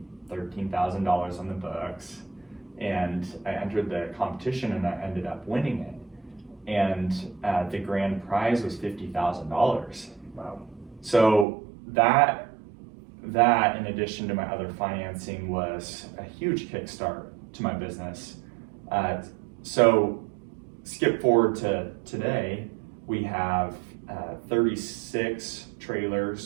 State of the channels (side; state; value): left; drops out; at 11.5 s